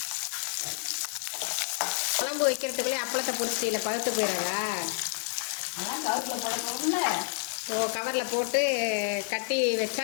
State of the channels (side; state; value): right; silent; 58 dB below the other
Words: குழம்பு வைக்கிறதுக்குள்ளே அப்பளத்தை பொரிச்சிட்டில பழுத்து போயிடாதா? ஓ, கவரில் போட்டு கட்டி வச்சா